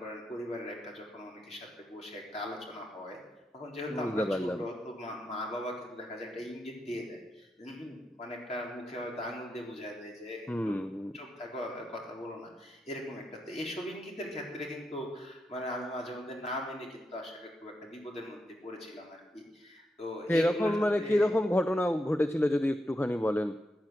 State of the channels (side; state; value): both; normal; correlation 0.84